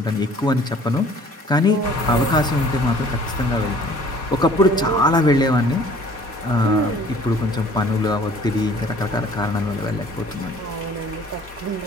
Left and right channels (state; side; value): normal; both; correlation 0.53